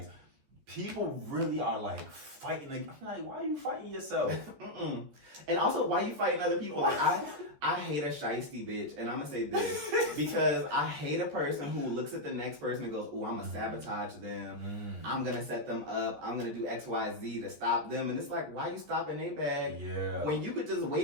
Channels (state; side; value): late; left; 14 ms